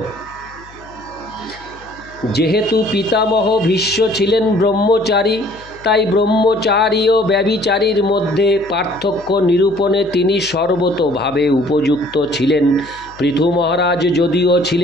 যেহেতু পিতামহ ভীষ্ম ছিলেন ব্রহ্মচারী, তাই ব্রহ্মচারী ও ব্যভিচারীর মধ্যে পার্থক্য নিরূপণে তিনি সর্বতোভাবে উপযুক্ত ছিলেন। পৃথু মহারাজ যদিও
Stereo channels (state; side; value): noise; left; hum, 23 dB below the sound